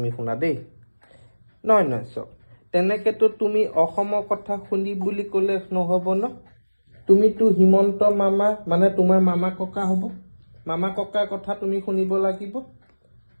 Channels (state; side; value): inverted; both; correlation -1.00